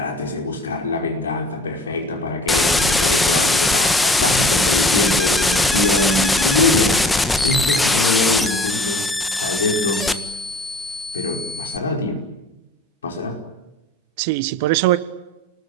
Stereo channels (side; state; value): both; normal; correlation 0.48